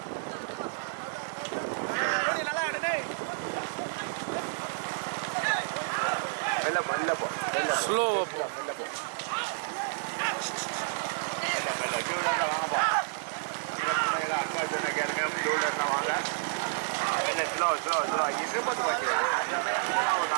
மெல்ல மெல்ல போ, ஸ்லோ போ, மெல்ல போ, மெல்ல மெல்ல. டூலர்ல வாங்கப்பா. அக்கா சொன்ன கேளுங்க, டூலர்ல வாங்க. Slow slow slow. 20 வண்டி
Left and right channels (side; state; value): left; silent; digital silence